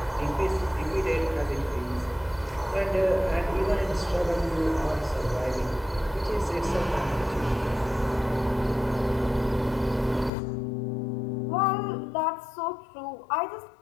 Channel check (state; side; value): drops out; right; at 10.3 s